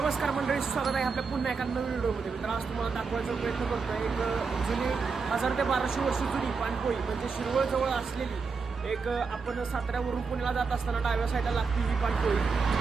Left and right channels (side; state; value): left; quieter; 5.0 dB